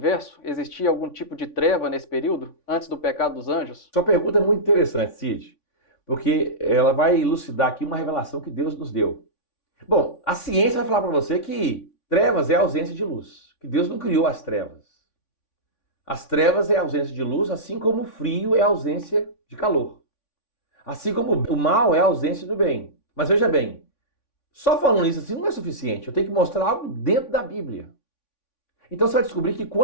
Existia algum tipo de treva nesse período, antes do pecado dos anjos? Sua pergunta é muito interessante, Cid, porque ela vai elucidar aqui uma revelação que Deus nos deu. Bom, a ciência vai falar para você que trevas é a ausência de luz, que Deus não criou as trevas. As trevas é a ausência de luz, assim como o frio é a ausência de calor. Assim como o mal é a ausência do bem. Mas veja bem, só falando isso assim não é suficiente. Eu tenho que mostrar algo dentro da Bíblia. Então você vai descobrir que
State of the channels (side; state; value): right; late; 3.5 ms